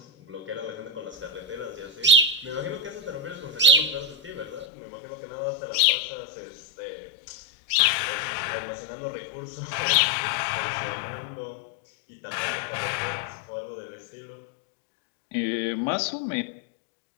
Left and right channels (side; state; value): right; drops out; at 4.7 s